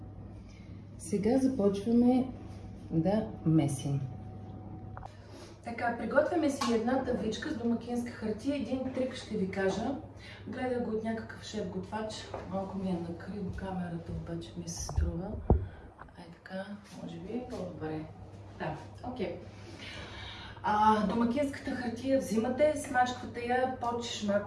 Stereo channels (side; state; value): both; identical; correlation 1.00